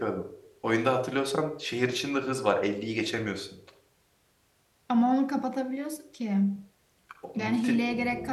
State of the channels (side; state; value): both; identical; correlation 1.00